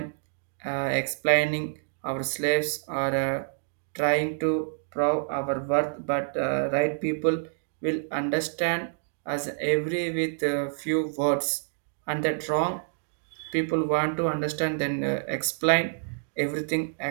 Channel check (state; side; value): silent; left; digital silence